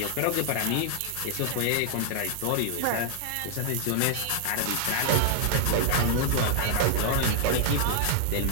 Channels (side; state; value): both; different; correlation 0.00